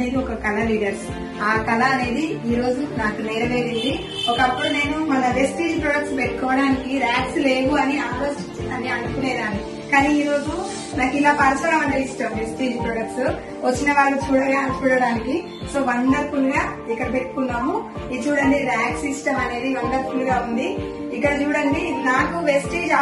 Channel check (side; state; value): both; identical; correlation 1.00